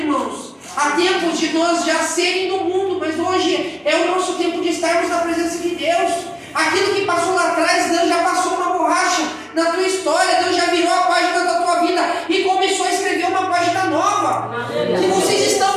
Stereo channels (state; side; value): identical; both; correlation 1.00